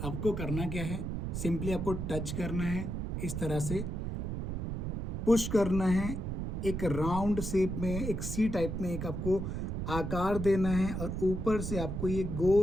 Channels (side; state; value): right; noise; rumble, 3 dB below the sound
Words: आपको करना क्या है, सिंपली आपको टच करना है, इस तरह से पुश करना है, एक राउंड शेप में, एक सी टाइप में एक आपको आकार देना है, और ऊपर से आपको ये